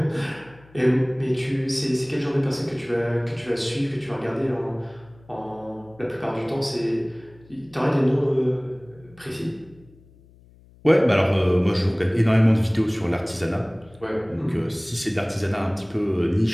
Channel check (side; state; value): left; noise; hum, 26 dB below the sound